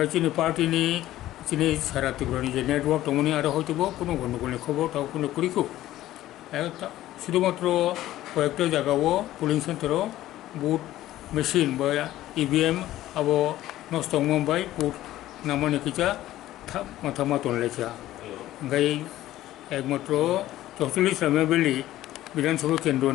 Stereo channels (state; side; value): quieter; right; 14.5 dB